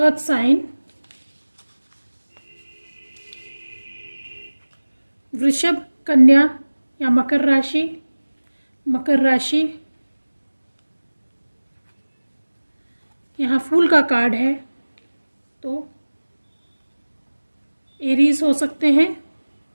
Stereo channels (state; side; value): inverted; both; correlation -1.00